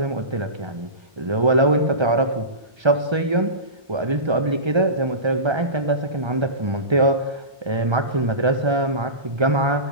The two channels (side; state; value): left; late; 1.3 ms